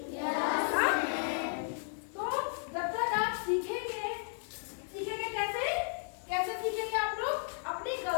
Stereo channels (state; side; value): silent; right; 55 dB below the other